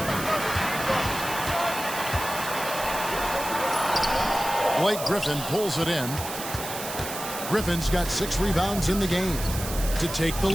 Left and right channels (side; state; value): right; noise; hiss, 8 dB below the sound